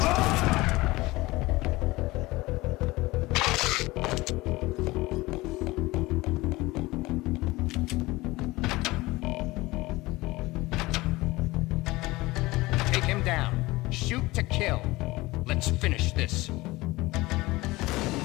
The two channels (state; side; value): quieter; right; 20.4 dB